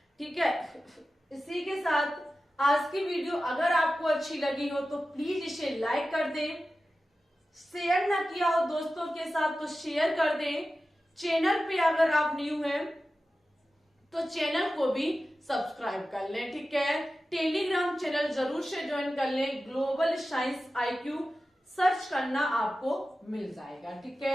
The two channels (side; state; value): both; normal; correlation 0.94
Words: ठीक है, इसी के साथ आज की वीडियो अगर आपको अच्छी लगी हो तो प्लीज इसे लाइक कर दें, शेयर ना किया हो दोस्तों के साथ तो शेयर कर दें। चैनल पे अगर आप न्यू हैं तो चैनल को भी सब्सक्राइब कर लें। ठीक है, टेलीग्राम चैनल जरूर से ज्वाइन कर लें, ग्लोबल साइंस IQ सर्च करना आपको मिल जाएगा। ठीक